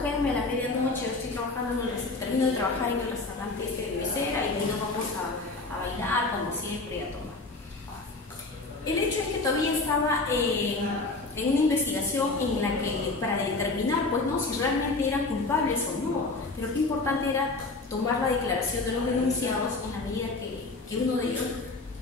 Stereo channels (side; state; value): right; quieter; 3.5 dB